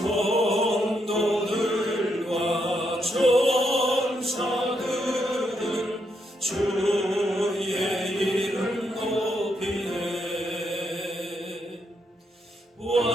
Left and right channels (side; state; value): both; normal; correlation 0.79